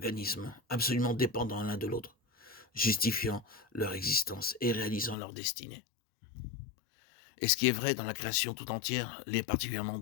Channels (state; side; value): drops out; right; at 5.2 s